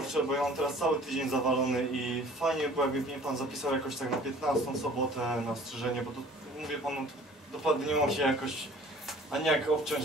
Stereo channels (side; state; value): both; normal; correlation 0.49